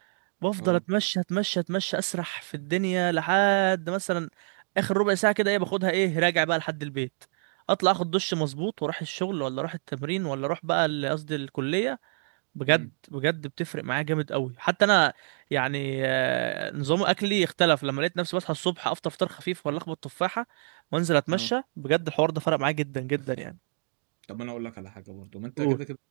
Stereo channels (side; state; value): left; silent; digital silence